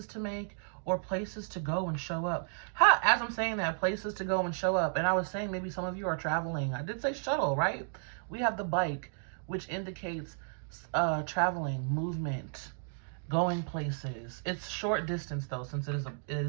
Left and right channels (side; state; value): left; silent; digital silence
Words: to make, or places to go and show up. As I'm saying that, places to go and show up. And I was saying maybe some of you are traveling. I did say shuttle, right? We have the bike, which indicates traveling, movement, going places. It's short distance though, since it